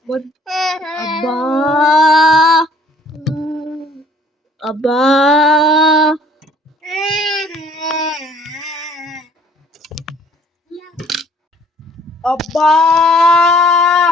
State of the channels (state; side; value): normal; both; correlation 0.57